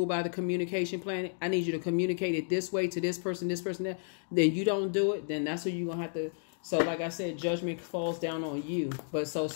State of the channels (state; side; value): silent; right; digital silence